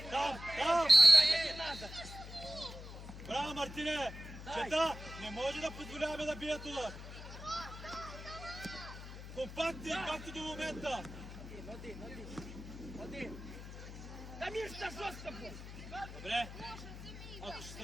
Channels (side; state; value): left; noise; hum, 12 dB below the sound